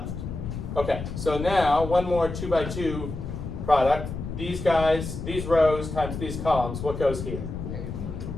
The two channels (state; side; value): noise; left; rumble, 7 dB below the sound